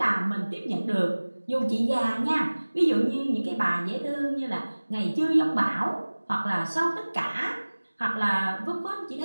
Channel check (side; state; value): both; inverted; correlation -1.00